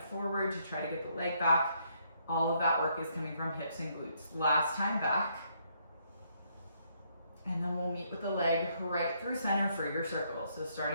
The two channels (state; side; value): inverted; both; correlation -0.72